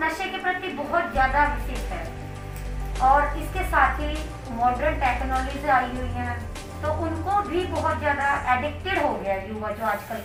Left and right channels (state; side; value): identical; both; correlation 1.00